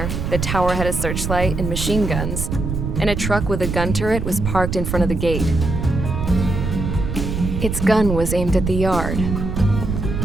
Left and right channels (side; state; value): right; noise; rumble, 3 dB below the sound